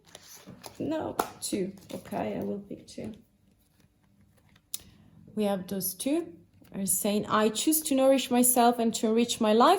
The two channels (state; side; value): identical; both; correlation 1.00